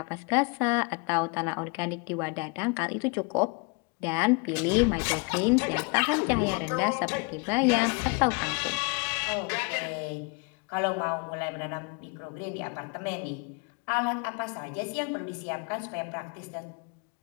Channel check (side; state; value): right; quieter; 31.6 dB